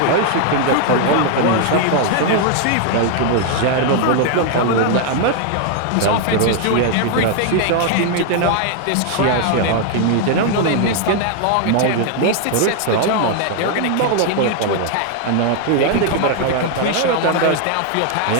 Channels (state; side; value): different; both; correlation 0.00